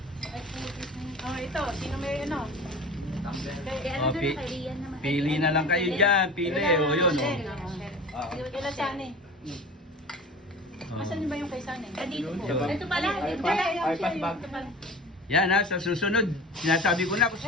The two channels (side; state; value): both; normal; correlation 0.37